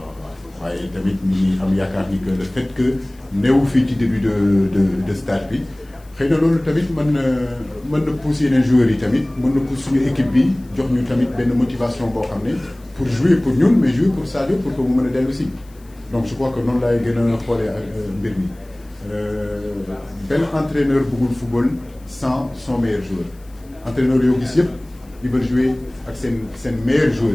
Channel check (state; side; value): noise; left; hiss, 29 dB below the sound